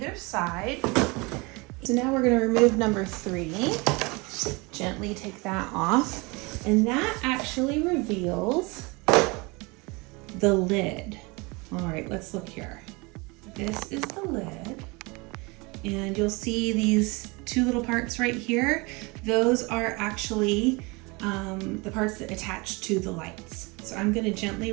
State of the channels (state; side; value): quieter; left; 26.7 dB